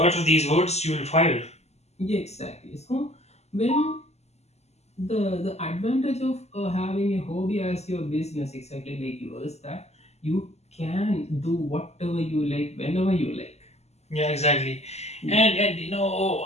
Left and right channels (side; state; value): right; late; 0.32 ms